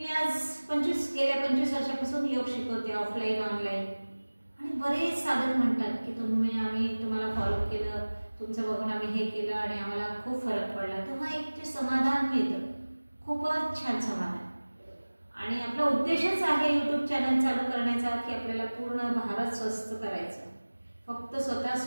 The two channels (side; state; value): both; inverted; correlation -1.00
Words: आज गेल्या 25 वर्षापासून योग शिकवते, ऑफलाईन ऑनलाईन, आणि बरेच साधक म्हणतात की आम्ही तुम्हाला फॉलो केलं, तुमचं बघून आम्ही हे केलं आणि आम्हाला खूप फरक पडला। तेव्हा एक जे समाधान मिळतं, खूपच छान समाधान। आणि आपला उद्देशच आहे YouTube चॅनल चालू करण्याचा की आपल्याला पूर्ण भारत स्वस्थ करायचं। फक्त स्वतः